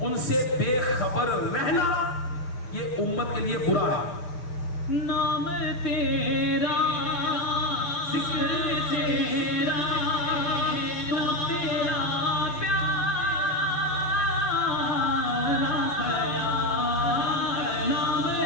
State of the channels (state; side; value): late; right; 6.8 ms